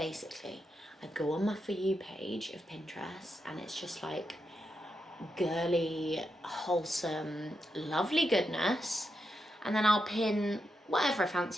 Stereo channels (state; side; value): normal; both; correlation 0.85